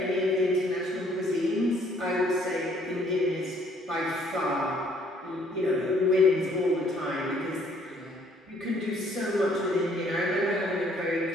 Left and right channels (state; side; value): normal; both; correlation 0.63